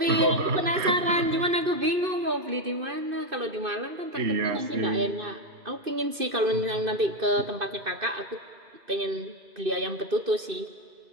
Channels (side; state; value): left; late; 2.6 ms